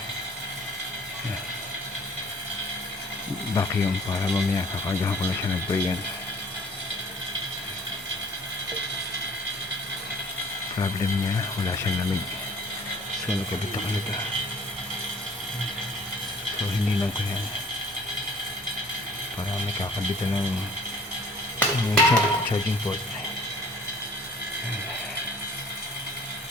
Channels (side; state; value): both; normal; correlation 0.52